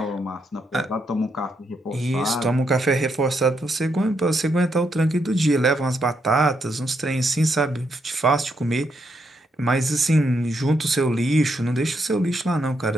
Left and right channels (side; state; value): both; normal; correlation 0.79